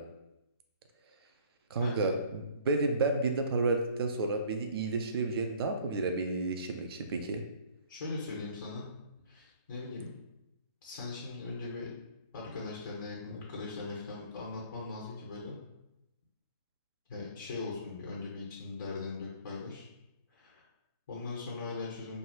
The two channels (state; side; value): inverted; both; correlation -0.54